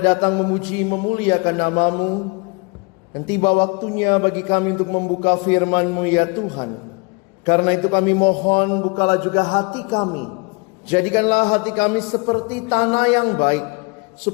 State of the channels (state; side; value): quieter; right; 29.6 dB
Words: memuji memuliakan nama-Mu. Dan tiba waktunya bagi kami untuk membuka firman-Mu ya Tuhan. Karena itu kami mohon bukalah juga hati kami. Jadikanlah hati kami seperti tanah yang baik.